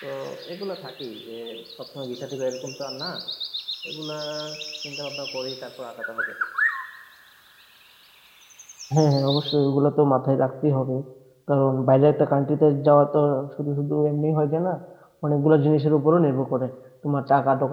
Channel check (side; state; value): both; identical; correlation 1.00